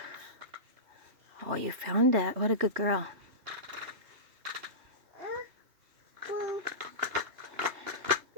Oh, you found that. What a good girl.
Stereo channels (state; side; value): late; left; 3.2 ms